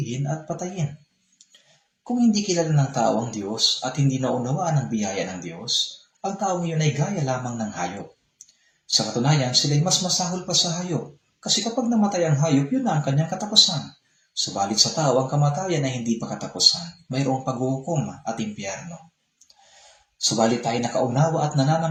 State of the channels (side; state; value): both; identical; correlation 1.00